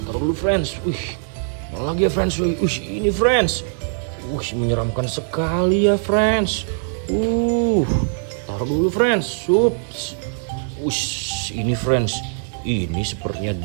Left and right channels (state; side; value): silent; left; digital silence